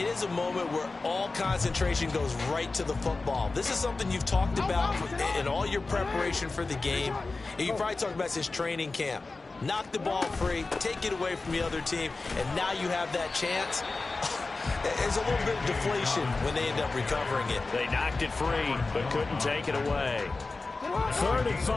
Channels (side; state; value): right; quieter; 3.6 dB